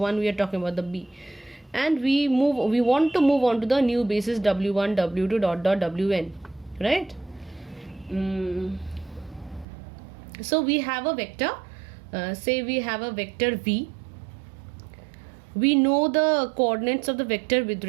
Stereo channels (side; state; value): left; drops out; at 9.7 s